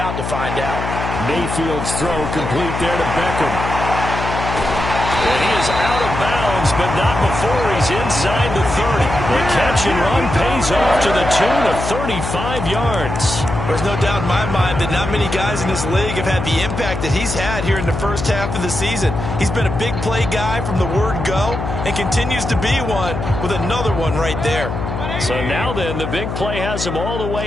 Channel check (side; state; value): left; noise; hum, 5 dB below the sound